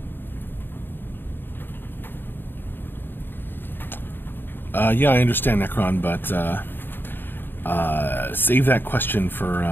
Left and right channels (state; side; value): late; right; 0.096 ms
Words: Yeah, I understand, Necron, but save that question for